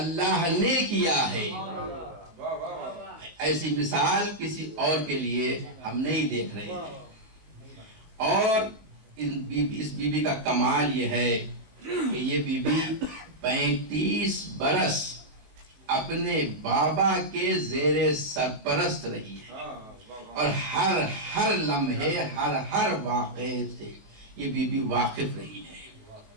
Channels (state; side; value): late; left; 18 ms